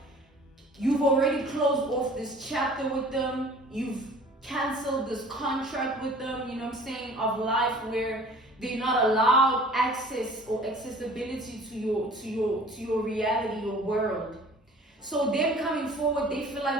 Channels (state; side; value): normal; both; correlation 0.48